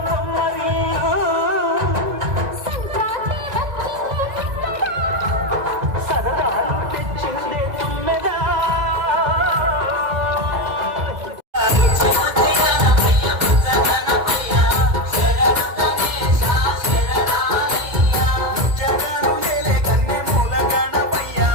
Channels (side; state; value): left; late; 2.2 ms